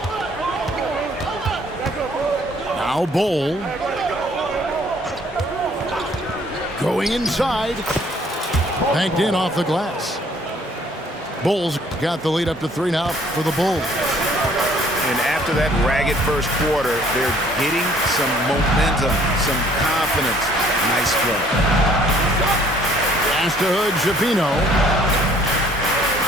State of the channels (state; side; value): normal; both; correlation 0.59